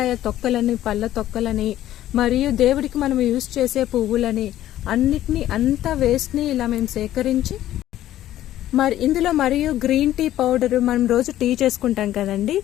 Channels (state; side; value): quieter; right; 13.2 dB